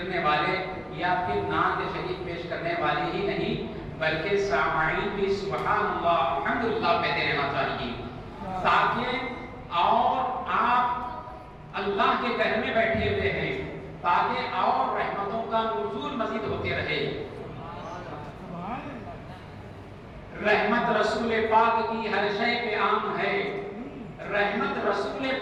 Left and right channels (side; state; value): both; identical; correlation 1.00